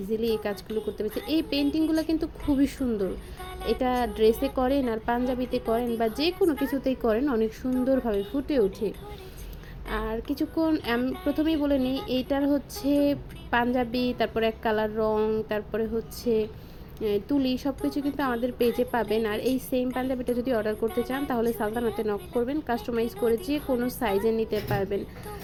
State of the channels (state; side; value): identical; both; correlation 1.00